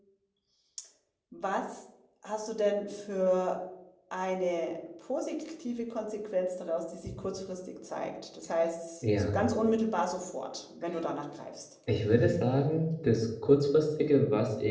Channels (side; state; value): both; identical; correlation 1.00